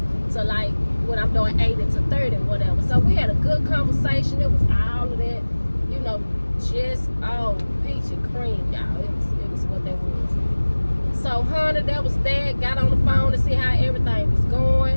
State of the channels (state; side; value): inverted; both; correlation -1.00